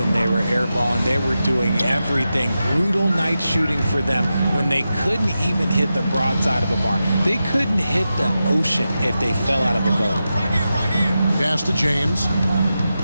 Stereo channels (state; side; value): inverted; both; correlation -0.91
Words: they were airballing, they were doing everything. Brutal night shooting for them when they couldn't even hit the broadside of a barn. They couldn't hit the ocean if they fell out of a boat. Pass to James.